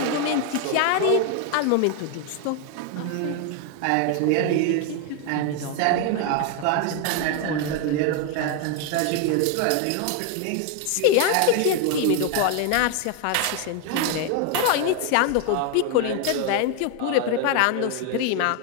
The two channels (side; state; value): both; different; correlation 0.01